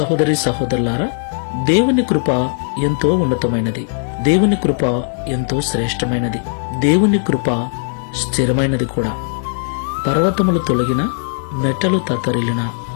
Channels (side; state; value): right; silent; 68 dB below the other